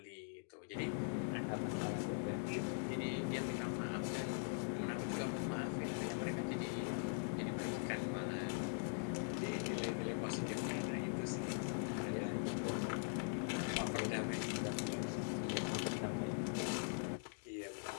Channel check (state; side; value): silent; right; digital silence